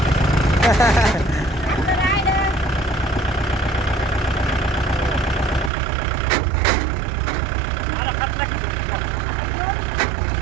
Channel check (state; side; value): drops out; left; at 5.7 s